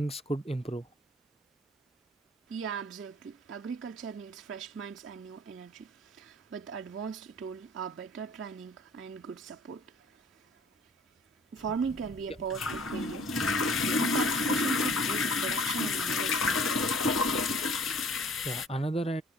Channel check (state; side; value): normal; both; correlation 0.52